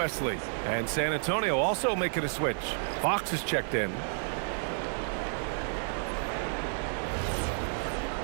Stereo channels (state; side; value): silent; left; digital silence